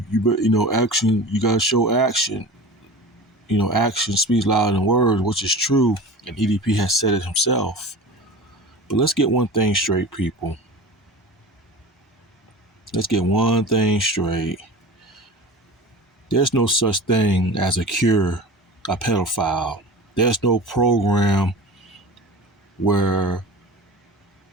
action, you gotta show action. Action speaks louder than words, which is true, and EDP has said it himself. But let's get one thing straight, people. Let's get one thing straight. There's no such thing as a cure a pedophile. There's no program where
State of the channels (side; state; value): both; normal; correlation 0.35